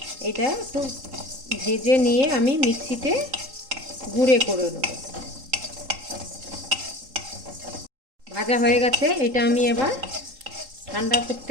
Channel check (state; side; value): late; left; 3.8 ms